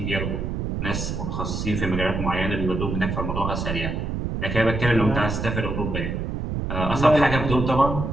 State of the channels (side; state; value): right; noise; rumble, 3 dB below the sound